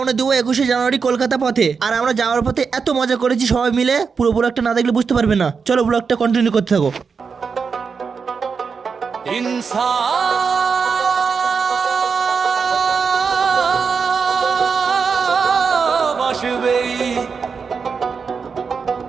দেবো 21শে জানুয়ারি কলকাতা পথে। আর আমরা যাওয়ার পথে এত মজা করেছি সবাই মিলে, পুরো ব্লগটা না দেখলে বুঝতে পারবে না। চলো ব্লগটা কন্টিনিউ করতে থাকো।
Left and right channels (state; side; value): quieter; left; 5.6 dB